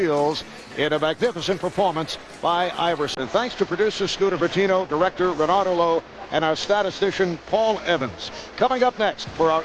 in a magnificent performance by Iverson. And thanks to producer Scooter Bertino, director Renato Lowe, and our statistician Paul Evans. Coming up next for our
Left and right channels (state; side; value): identical; both; correlation 1.00